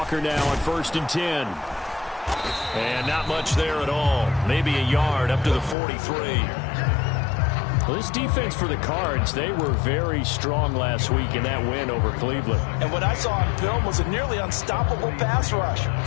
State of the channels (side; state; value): right; drops out; at 5.8 s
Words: now on 1st and 10. And not much there at all. Maybe a yard up to the 43. Well, this defense for the Cards, they were very strong last week in that win over Cleveland. And what I saw on film was a nearly unstoppable pass rush.